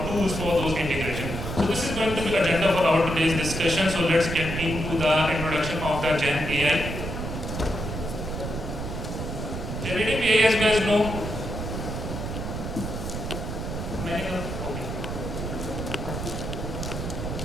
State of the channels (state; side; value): noise; right; rumble, 5 dB below the sound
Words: tools for those integration. So this is going to be agenda for our today's discussion. So let's get into the introduction of the Gen AI. Generative AI, as you guys know,